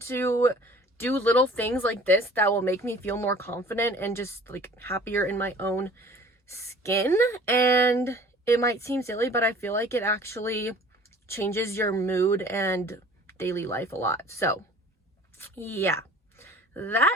to do little things like this that will make me feel more confident and just like happier in my own skin. And it might seem silly, but I feel like it actually changes your mood and daily life a lot. So yeah,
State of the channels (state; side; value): normal; both; correlation 0.48